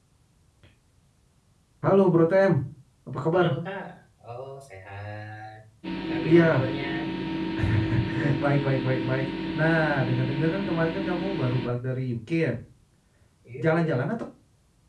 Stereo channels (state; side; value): identical; both; correlation 1.00